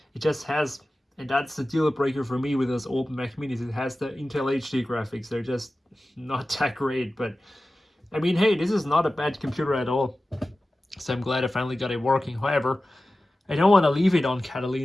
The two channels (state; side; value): normal; both; correlation 0.95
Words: It just has, and that's the deal breaker for me with those old Mac Minis, it has the Intel HD graphics. They're just not that great, but I mean, hey, this is not a bad computer at all. So I'm glad I finally got it working. However, I don't want to leave it on